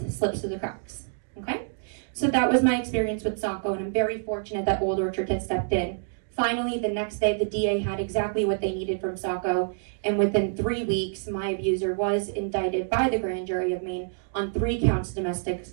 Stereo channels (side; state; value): left; silent; digital silence